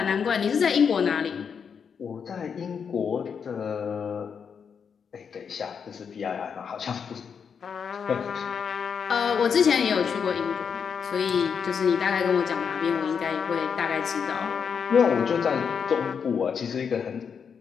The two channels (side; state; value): right; quieter; 6.7 dB